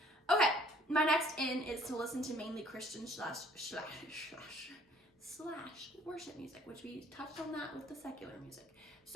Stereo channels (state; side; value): normal; both; correlation 0.58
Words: Okay. My next in is to listen to mainly Christian slash worship music, which we touched on that with the secular music.